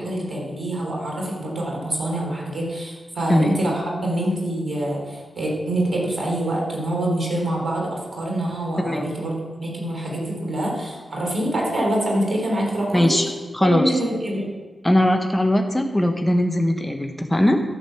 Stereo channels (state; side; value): normal; both; correlation 0.90